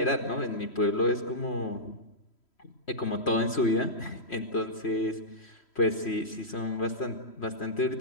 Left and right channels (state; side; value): late; right; 3.1 ms